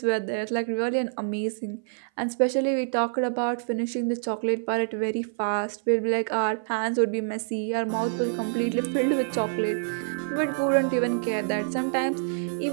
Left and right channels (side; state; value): left; silent; 57 dB below the other